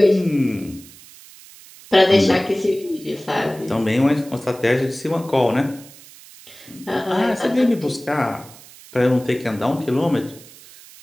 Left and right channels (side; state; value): right; noise; hiss, 21 dB below the sound